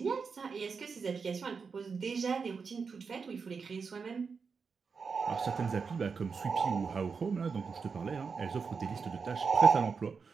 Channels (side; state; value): left; quieter; 5.4 dB